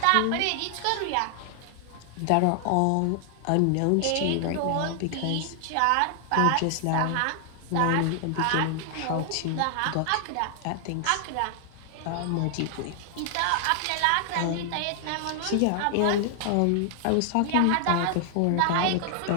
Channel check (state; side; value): different; both; correlation 0.00